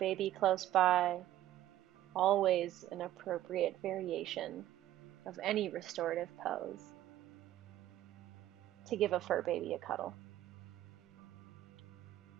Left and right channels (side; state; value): left; quieter; 13.5 dB